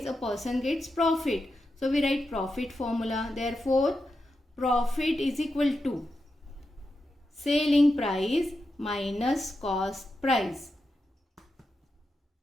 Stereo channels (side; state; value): both; normal; correlation 0.88